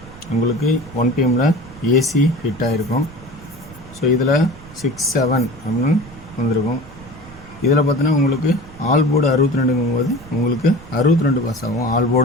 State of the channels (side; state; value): right; noise; rumble, 19 dB below the sound